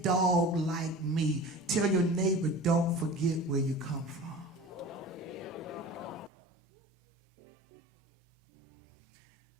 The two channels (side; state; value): left; drops out; at 6.3 s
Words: dog like me." Tell your neighbor, don't forget where you come from.